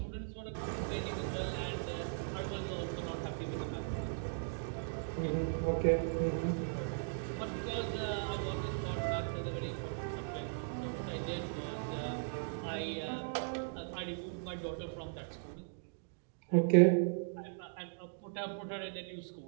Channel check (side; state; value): left; silent; digital silence